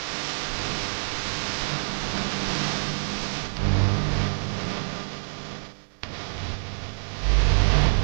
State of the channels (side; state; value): left; silent; digital silence